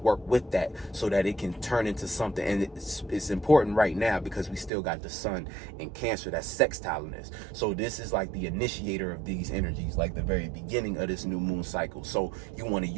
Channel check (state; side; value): drops out; left; at 4.7 s